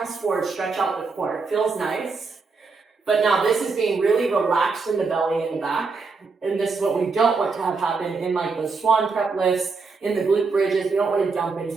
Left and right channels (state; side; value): quieter; left; 4.5 dB